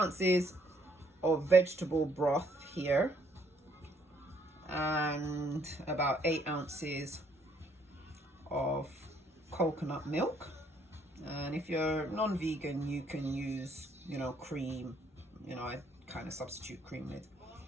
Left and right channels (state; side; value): normal; both; correlation 0.67